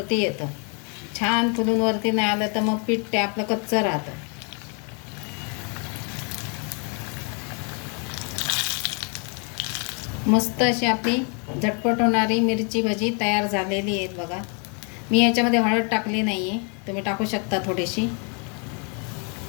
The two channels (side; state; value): right; quieter; 37.3 dB